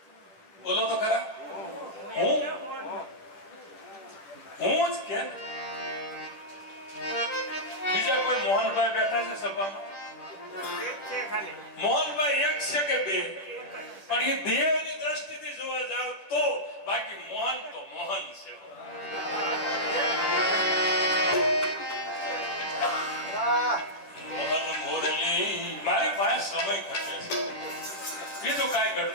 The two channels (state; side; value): late; right; 10 ms